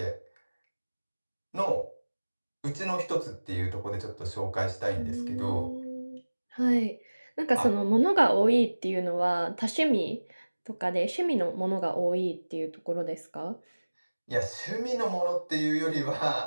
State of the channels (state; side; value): inverted; both; correlation -1.00